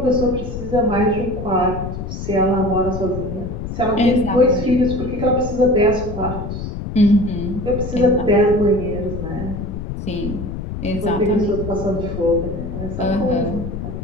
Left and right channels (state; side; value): noise; left; rumble, 6 dB below the sound